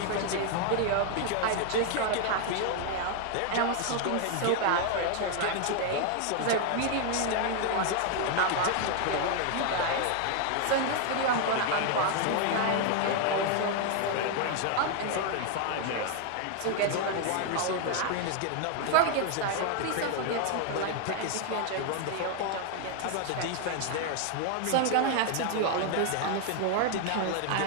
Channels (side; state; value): both; different; correlation 0.00